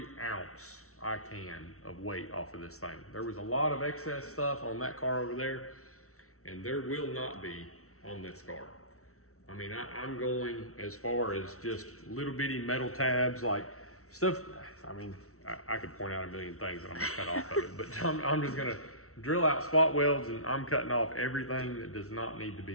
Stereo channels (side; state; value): right; late; 0.64 ms